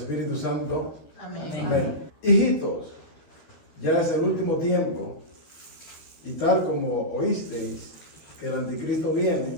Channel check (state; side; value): late; right; 13 ms